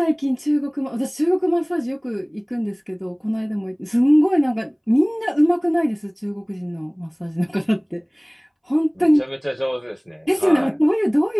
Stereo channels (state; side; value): identical; both; correlation 1.00